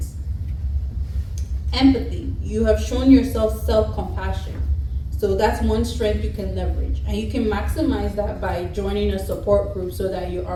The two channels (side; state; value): both; identical; correlation 1.00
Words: Empathy. You have shown yourself self-compassion. So that's one strength you can leverage. And you can maximize that by joining a support group so that you're